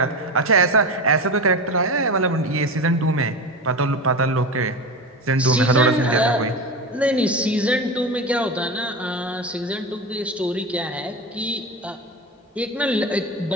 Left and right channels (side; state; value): both; normal; correlation 0.24